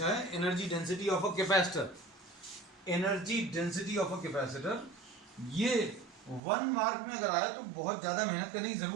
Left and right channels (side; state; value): left; drops out; at 6.4 s